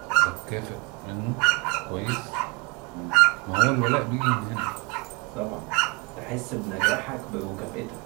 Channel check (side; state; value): left; quieter; 29.1 dB